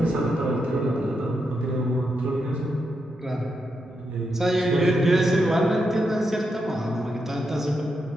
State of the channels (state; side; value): normal; both; correlation 0.84